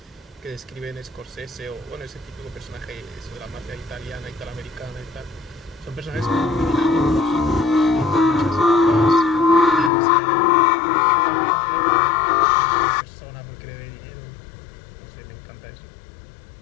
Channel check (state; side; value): drops out; right; at 9.9 s